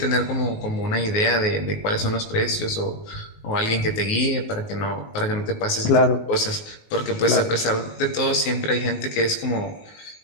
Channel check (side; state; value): right; late; 19 ms